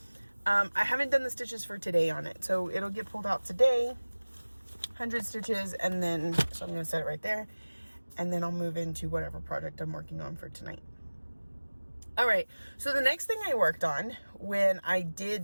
I haven't done the stitches for today on it, so it'll get pulled out today, 100 stitches, and then, so I'm going to set it right there, and then I'll move into whatever project I'm working on for tonight. All right, so the next thing I worked on when I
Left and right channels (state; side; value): inverted; both; correlation -1.00